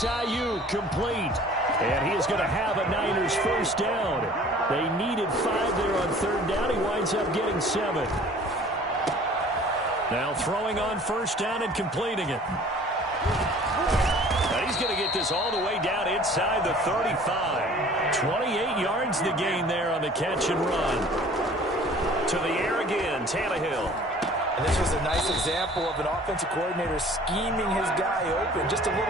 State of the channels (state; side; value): normal; both; correlation 0.49